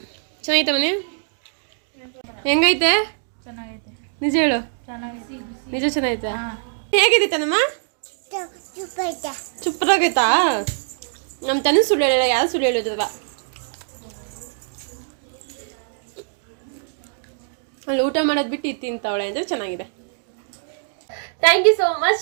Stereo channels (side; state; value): left; silent; digital silence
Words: ಚೆನ್ನಾಯ್ತಾ ಮನೆ? ಹೆಂಗೈತೆ? ಚೆನ್ನಾಗೈತೆ. ನಿಜ ಹೇಳು, ನಿಜ ಚೆನ್ನಾಯ್ತಾ? ಹೇಗಿದೆ ತನಮ್ಮ? ಸೂಪರಾಗೈತಾ? ನಮ್ಮ ತನ ಸುಳ್ಳು ಹೇಳಲ್ಲ, ಯಾರು ಸುಳ್ಳು ಹೇಳಿದ್ರಲ್ಲ. ಅಲ್ಲಿ ಊಟ ಮಾಡೋದು ಬಿಟ್ಟು ಇದು ತಿಂತಾವಳೆ ಅಂದರೆ ಚೆನ್ನಾಗಿದೆ. Thank you so